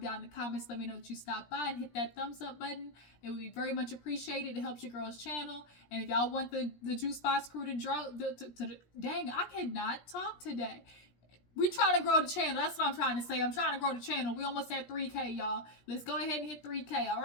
down in the comments. Let me know that you stopped by and hit that thumbs up button. It would be very much appreciated. It helps your girl's channel. And if y'all want the Juice Box crew to draw, dang, I cannot talk today. We trying to grow the channel. That's what I'm trying to say. I'm trying to grow the channel. We almost at 3K, y'all. Let's go ahead and hit 3K, all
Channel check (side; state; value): right; late; 17 ms